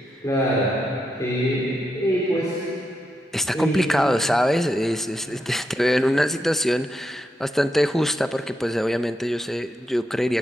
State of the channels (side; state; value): both; normal; correlation 0.84